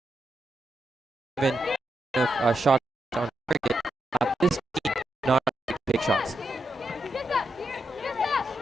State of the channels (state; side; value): normal; both; correlation 0.85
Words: Even a shot on target, this team not big shots.